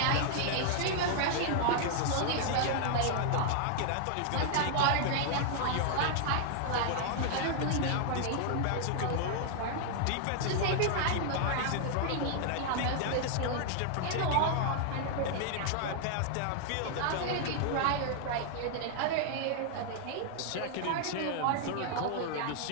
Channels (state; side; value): different; both; correlation 0.00